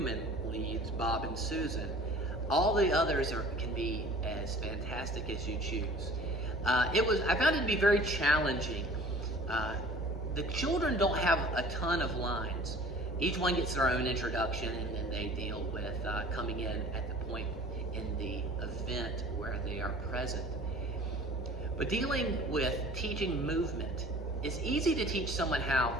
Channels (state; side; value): normal; both; correlation 0.47